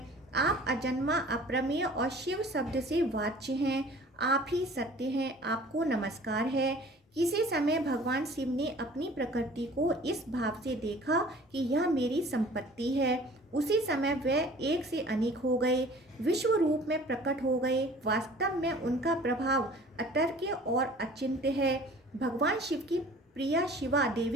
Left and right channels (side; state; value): both; normal; correlation 0.48